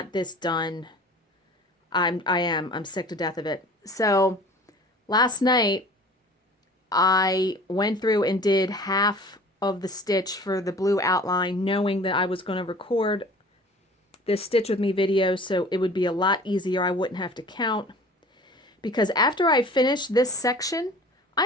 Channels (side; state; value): both; normal; correlation 0.45